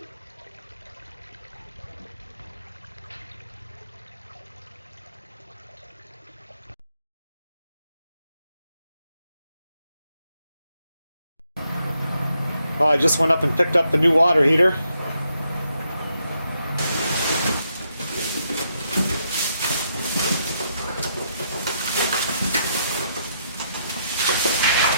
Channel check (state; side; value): inverted; both; correlation -0.77